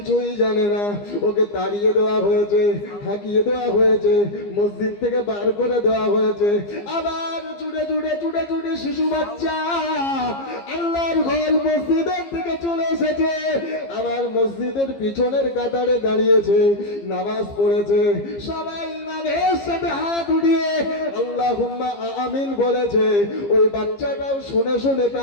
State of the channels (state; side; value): late; right; 15 ms